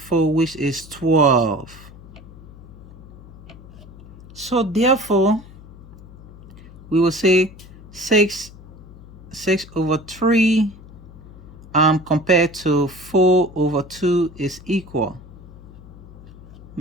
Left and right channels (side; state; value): left; noise; hum, 18 dB below the sound